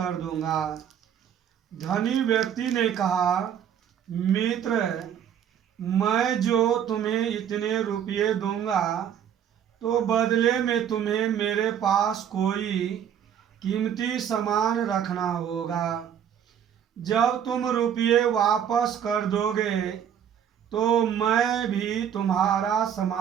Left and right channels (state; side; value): quieter; left; 9.0 dB